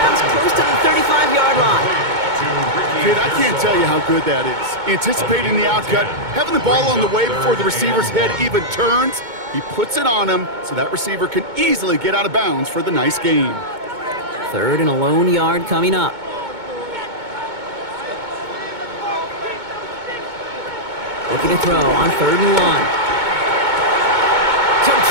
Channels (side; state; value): left; late; 2.2 ms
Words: close to the 35-yard line. Kid, I can't tell you how good that is. Anticipating the outcut, having the ball on the way before the receiver's head even turns, he puts it on him so that receiver can easily get out of bounds for the nice gain. 3rd and a lone yard coming up. Looking to throw on 3rd and 1.